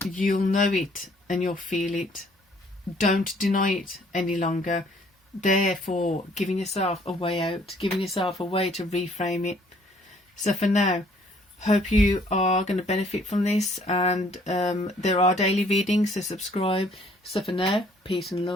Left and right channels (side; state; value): both; normal; correlation 0.61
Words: you'll know it and you'll feel it. Don't deny it any longer. Therefore, giving yourself a way out, giving yourself a way to reframe it. So for now, hope you are going to benefit from this, and there are daily readings, so subscribe. So for now, peace and